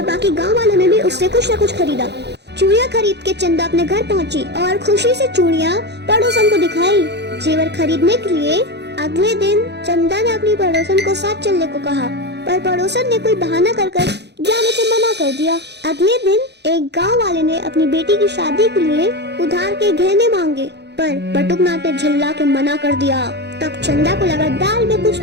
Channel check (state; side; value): late; left; 0.49 ms